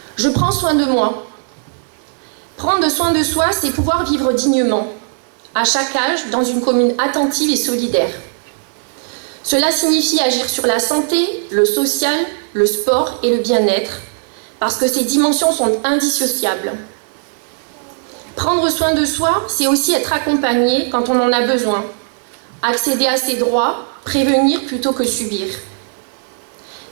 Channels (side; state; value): left; silent; digital silence